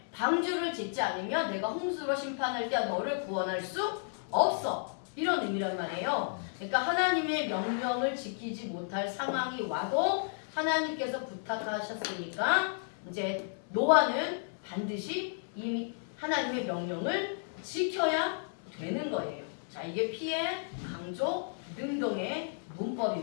방주를 짓지 않으면 내가 홍수로 심판할 때 너를 구원할 수 없어. 이런 의미란 말이에요. 그러니까 하나님의 명령을 지키지 못할 상황이 와도 하나님께서 부탁하셨으니까 이제 노아는 반드시 이 하나님의 명령을 지켜야 되는 거예요. 자, 이게 피해 강조 능동의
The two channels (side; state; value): right; silent; 56 dB below the other